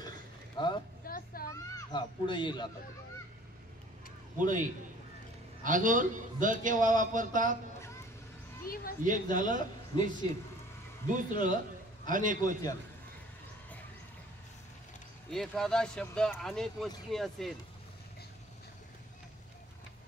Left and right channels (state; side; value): normal; both; correlation 0.52